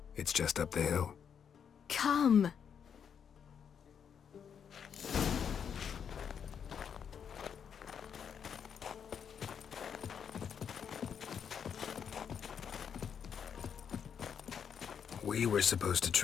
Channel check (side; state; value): right; quieter; 7.6 dB